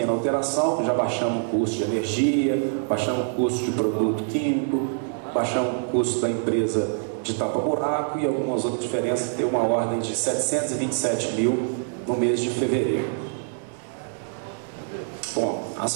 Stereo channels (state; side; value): silent; left; digital silence